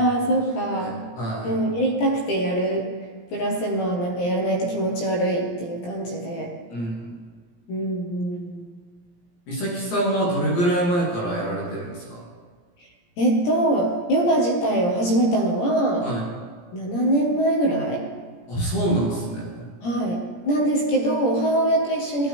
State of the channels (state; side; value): late; right; 17 ms